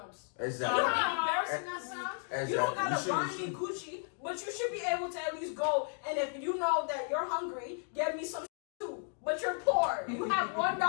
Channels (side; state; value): right; silent; 55 dB below the other